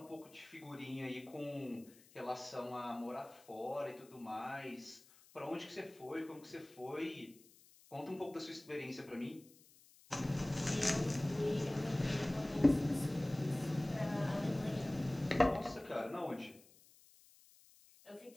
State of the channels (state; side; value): noise; left; hiss, 25 dB below the sound